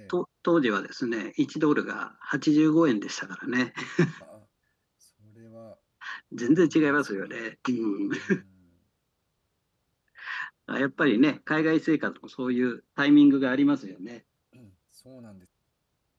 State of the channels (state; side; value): identical; both; correlation 1.00